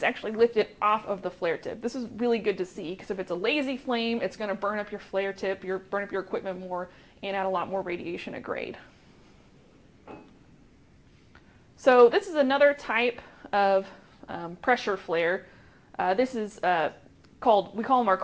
actually lifted off of the flare tip. This is really good to see, because if it's a lazy flame, it's going to burn up your flare tip, burn up your equipment more, and add a lot more radiation at grade. So this is another type of pressure flare. This is we call them our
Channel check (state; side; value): identical; both; correlation 1.00